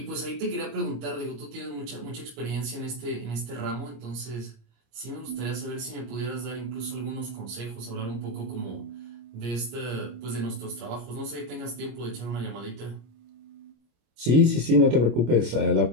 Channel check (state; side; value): late; left; 25 ms